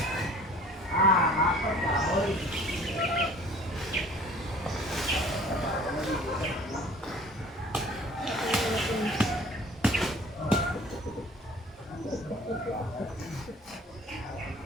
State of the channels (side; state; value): both; normal; correlation 0.49